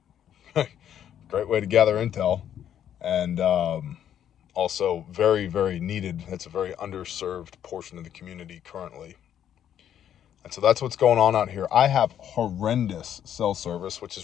Great way to gather intel, and also very, very needed. It's a very underserved portion of the community currently. And so that's what's going on out here. I have horrendous cell service, which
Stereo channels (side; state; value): right; quieter; 10.0 dB